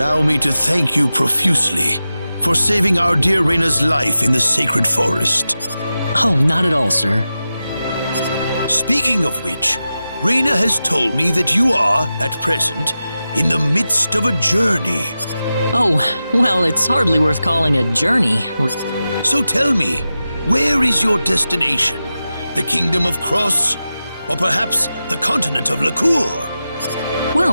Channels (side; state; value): both; inverted; correlation -0.93